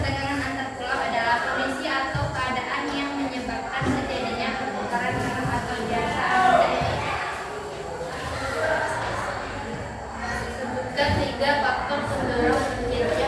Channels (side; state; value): both; identical; correlation 1.00